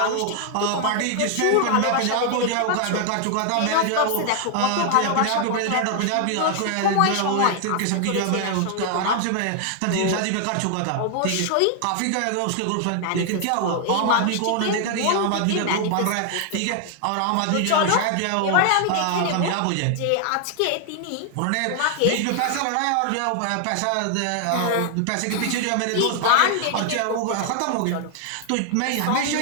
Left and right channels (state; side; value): different; both; correlation 0.00